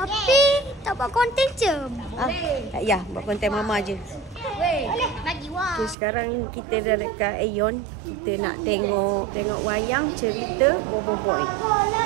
tak buat konten je. Ya, buat konten Mama je. Bagi wah. Okay, sekarang kita dah dekat Aeon. Kita nak tengok wayang cerita Bobo Boy.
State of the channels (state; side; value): drops out; left; at 6.0 s